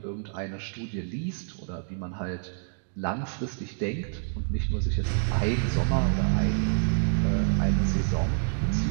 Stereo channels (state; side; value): silent; left; digital silence